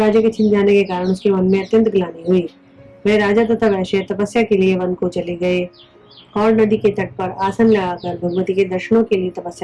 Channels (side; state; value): both; identical; correlation 1.00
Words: अत्यंत ग्लानि हुई। वे राजा तथा वैश्य तपस्या के लिए वन को चले गए और नदी के तट पर आसन लगाकर भगवती के दर्शनों के लिए